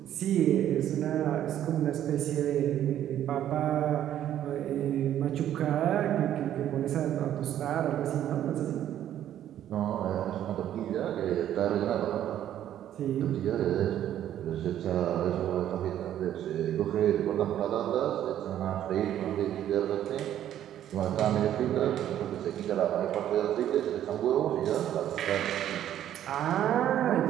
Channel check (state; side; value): quieter; left; 11.3 dB